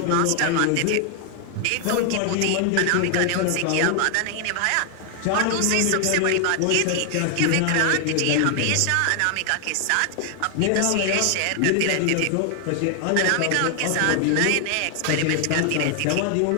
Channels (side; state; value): both; different; correlation 0.00